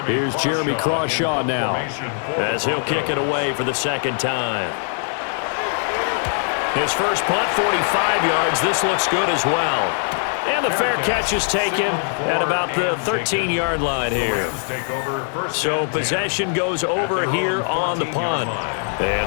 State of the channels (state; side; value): silent; right; 57 dB below the other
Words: Here's Jeremy Crawshaw now as he'll kick it away for the 2nd time. His first punt, 45 yards. This looks good as well. And the fair catch is taken at about the 13-yard line here. So possession goes over here on the punt. And